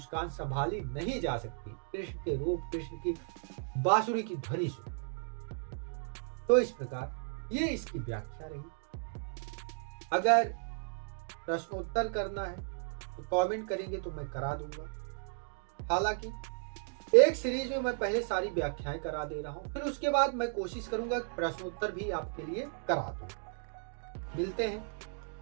संभाली नहीं जा सकती कृष्ण के रूप, कृष्ण की बांसुरी की ध्वनि सुन। तो इस प्रकार ये इसकी व्याख्या रही। अगर प्रश्नोत्तर करना है तो कमेंट करेंगे तो मैं करा दूंगा। हालांकि एक सीरीज में मैं पहले सारी व्याख्याएं करा दे रहा हूं, फिर उसके बाद मैं कोशिश करूंगा प्रश्नोत्तर भी आपके लिए करा दूं। मिलते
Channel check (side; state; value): left; silent; digital silence